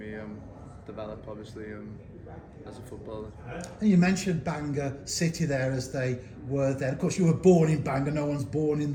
develop, obviously, as a footballer. And you mentioned Bangor City there, as they were there. Of course, you were born in Bangor. No one's born in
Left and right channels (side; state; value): both; identical; correlation 1.00